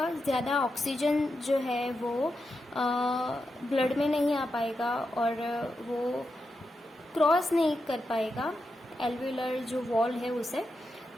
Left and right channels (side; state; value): both; normal; correlation 0.87